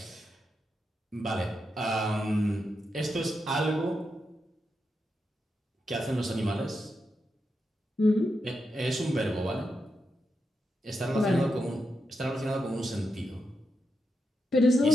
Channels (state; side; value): normal; both; correlation 0.86